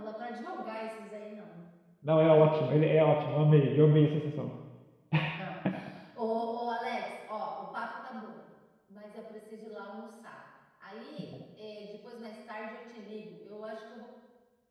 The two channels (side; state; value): both; identical; correlation 1.00